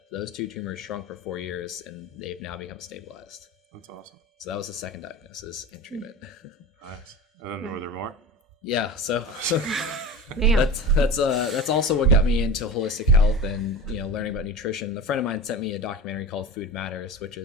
those 2 tumors shrunk for 4 years, and they've now become stabilized. That's awesome. So that was the second diagnosis and treatment. Nice. And then were there more? Yeah, so Man. that's also what got me into holistic health and learning about nutrition. A friend of mine sent me a documentary called Food Matters, which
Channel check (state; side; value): normal; both; correlation 0.30